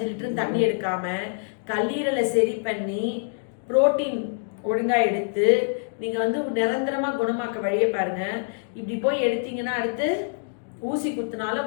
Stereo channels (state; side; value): silent; right; digital silence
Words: லிட்டர் தண்ணி எடுக்காம கல்லீரலை சரி பண்ணி புரோட்டீன் ஒழுங்கா எடுத்து நீங்க வந்து நிரந்தரமா குணமாக்க வழியை பாருங்க. இப்படி போய் எடுத்தீங்கன்னா அடுத்து ஊசி